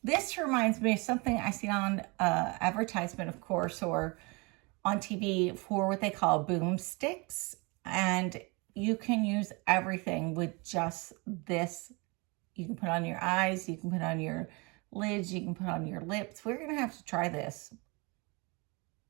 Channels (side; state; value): left; quieter; 28.3 dB